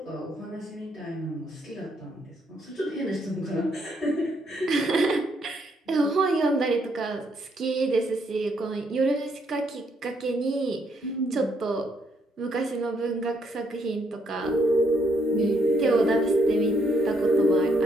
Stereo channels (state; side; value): normal; both; correlation 0.73